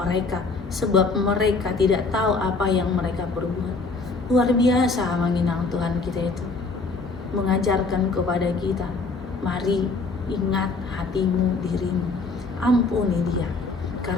sebab mereka tidak tahu apa yang mereka perbuat. Luar biasa menginang Tuhan kita itu, mengajarkan kepada kita, mari ingat hatimu, dirimu, ampuni dia.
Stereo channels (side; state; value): right; quieter; 3.9 dB